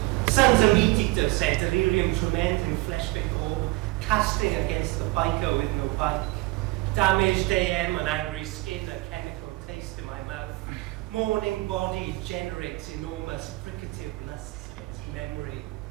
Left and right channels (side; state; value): left; quieter; 21.8 dB